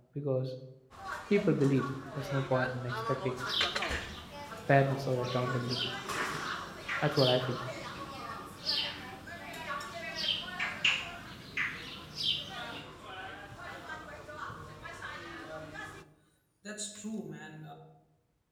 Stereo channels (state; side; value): identical; both; correlation 1.00